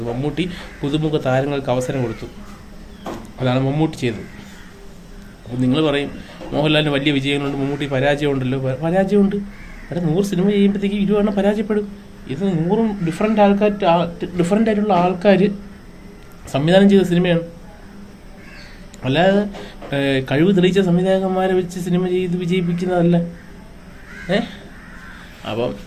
മമ്മൂട്ടി പുതുമുഖ താരങ്ങൾക്ക് അവസരം കൊടുത്തു. അതാണ് മമ്മൂട്ടി ചെയ്തത്. അപ്പോൾ നിങ്ങൾ പറയും മോഹൻലാലിന് വലിയ വിജയങ്ങളുണ്ട്, മമ്മൂട്ടി പരാജയമുണ്ടല്ലോ. പരാജയമുണ്ട്. അവിടെ 100 സിനിമ ചെയ്യുമ്പോഴത്തേക്ക് 20 പരാജയപ്പെടും. ഇത് 100 ഡിഫറൻ്റ് ആയിട്ടുള്ള ആൾക്കാർ സംവിധാനം ചെയ്ത സിനിമയാണ്. അല്ലാതെ കഴിവ് തെളിയിച്ച സംവിധായകന്മാരെ വെച്ച് സിനിമ ചെയ്ത് വിജയിപ്പിക്കുന്നതല്ല. അപ്പം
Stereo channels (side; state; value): both; identical; correlation 1.00